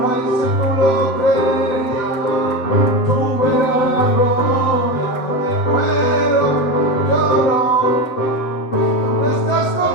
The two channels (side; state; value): right; late; 7.3 ms